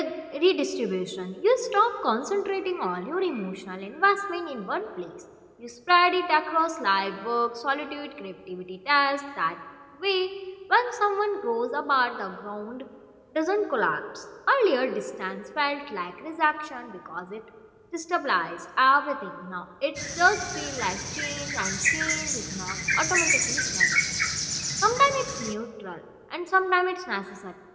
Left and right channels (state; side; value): identical; both; correlation 1.00